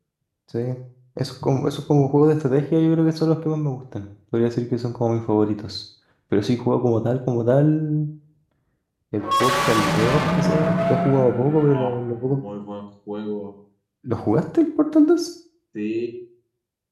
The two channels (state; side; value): identical; both; correlation 1.00